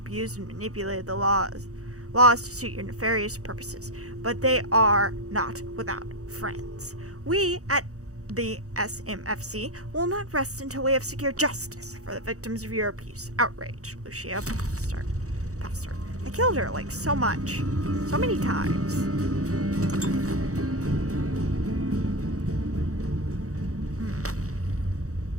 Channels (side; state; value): left; late; 0.65 ms